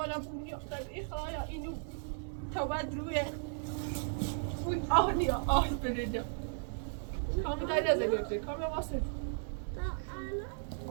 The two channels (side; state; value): left; silent; digital silence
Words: بونیا خیلی خواهیا اینو تا بعد روی آه نیا آه بریدم کامی داری از اگرده کامی واسه